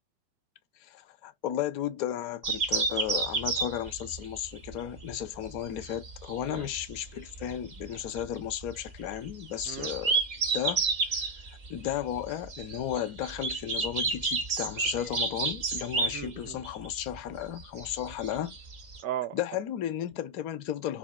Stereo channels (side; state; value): left; late; 2.0 ms